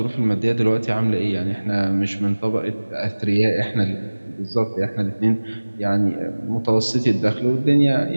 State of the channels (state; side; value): inverted; both; correlation -1.00